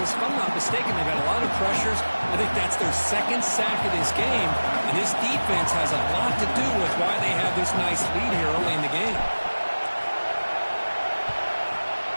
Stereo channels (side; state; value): both; inverted; correlation -1.00